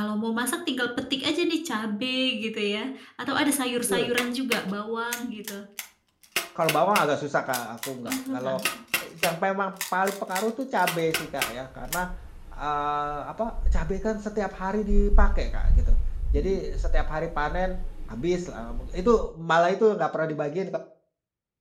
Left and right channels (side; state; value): both; identical; correlation 1.00